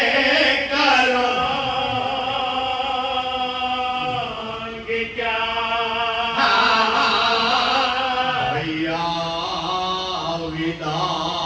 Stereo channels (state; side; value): identical; both; correlation 1.00